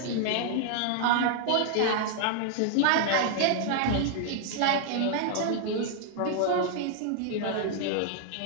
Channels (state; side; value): different; both; correlation 0.00